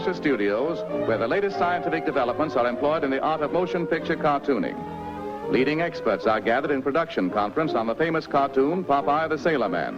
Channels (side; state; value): both; identical; correlation 1.00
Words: Studios, where the latest scientific developments are employed in the art of motion picture cartooning. Leading experts are gathered in production conference on the famous cartoon, Popeye the Sailor